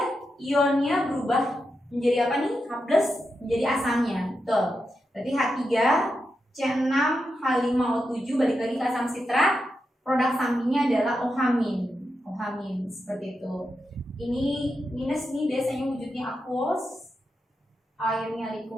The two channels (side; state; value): both; normal; correlation 0.87